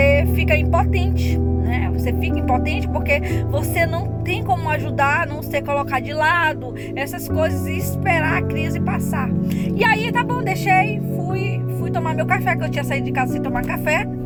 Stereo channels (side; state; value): both; identical; correlation 1.00